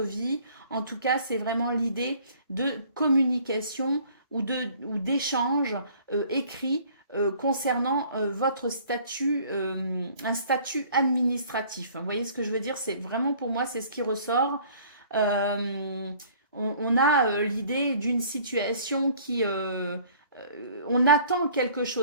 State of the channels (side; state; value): both; inverted; correlation -0.54